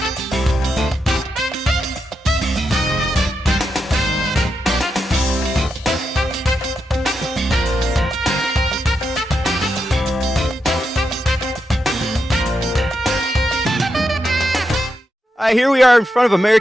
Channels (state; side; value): normal; both; correlation 0.85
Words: Here we are in front of